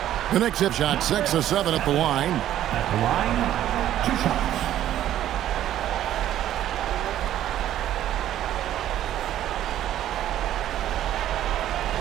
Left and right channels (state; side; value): quieter; left; 12.1 dB